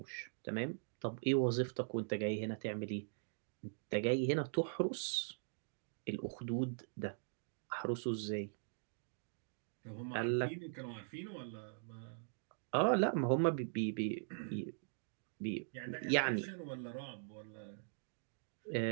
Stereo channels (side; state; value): left; silent; digital silence